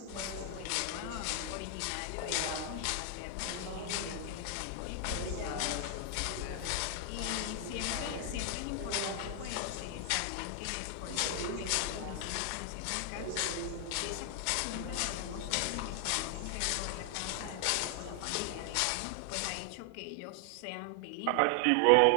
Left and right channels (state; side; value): different; both; correlation 0.00